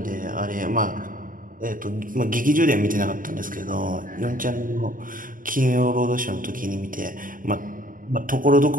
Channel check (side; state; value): left; late; 0.40 ms